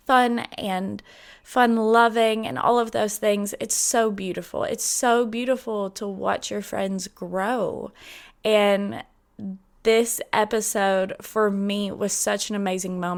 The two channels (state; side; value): identical; both; correlation 1.00